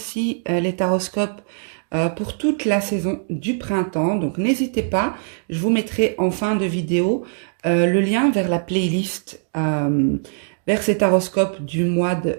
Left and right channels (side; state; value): left; silent; digital silence